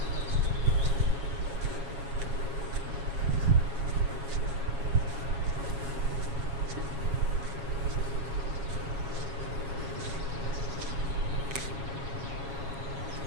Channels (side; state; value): left; late; 7.3 ms